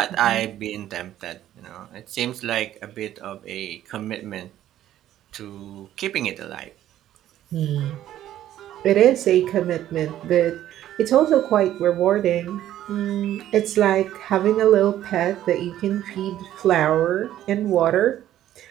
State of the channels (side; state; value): left; quieter; 12.5 dB